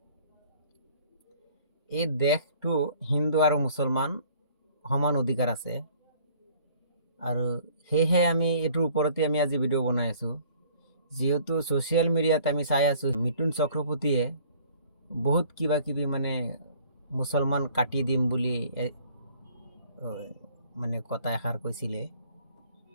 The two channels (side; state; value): both; inverted; correlation -0.55